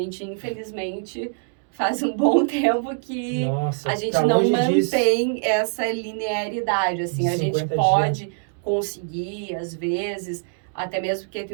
infelizmente, faz um bom tempo que a gente não mantém essa linearidade. Assim, a gente pode conseguir, às vezes, até mesmo porque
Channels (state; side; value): silent; left; digital silence